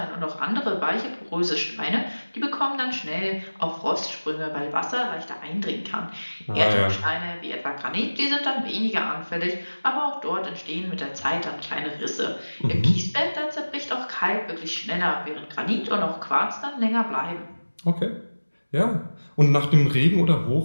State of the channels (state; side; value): inverted; both; correlation -1.00